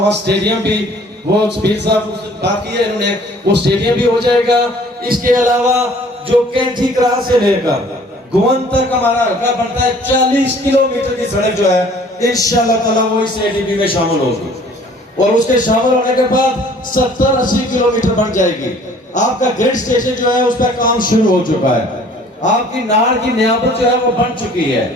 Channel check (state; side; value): normal; both; correlation 0.54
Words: وہاں سٹیڈیم بھی، وہ پیر صاحب باقی ہے، انہوں نے وہ سٹیڈیم بھی ہو جائے گا. اس کے علاوہ جو کینٹھی کرا سے لے کر گون تک ہمارا حلقہ بنتا ہے، 40 کلومیٹر کی سڑک جو ہے انشاءاللہ تعالی وہ اس ADB میں شامل ہوگی. اور اس کے شامل ہونے کے بعد 70-80 کلومیٹر بن جائے گی. آپ کا گریڈ سٹیشن جو ہے اس پہ کام شروع ہو چکا ہے. آپ کی ناڑ کی نیابت جو ہے وہ بن چکی ہے.